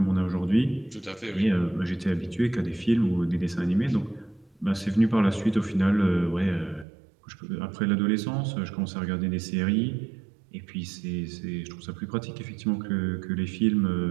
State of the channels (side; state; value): left; drops out; at 6.9 s